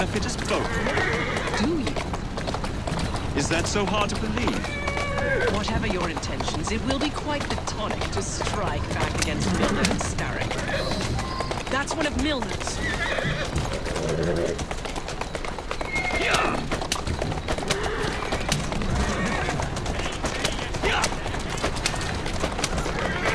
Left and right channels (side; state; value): both; identical; correlation 1.00